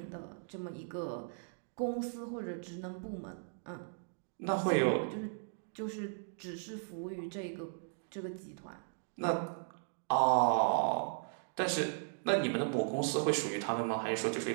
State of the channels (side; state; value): left; silent; digital silence